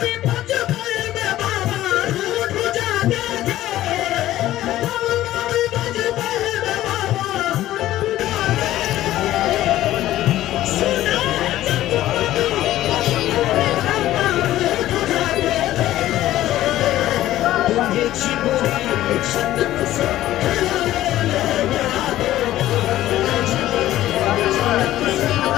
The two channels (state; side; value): quieter; right; 14.3 dB